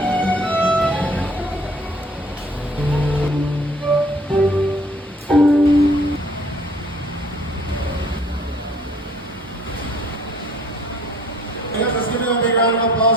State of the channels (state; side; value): normal; both; correlation 0.58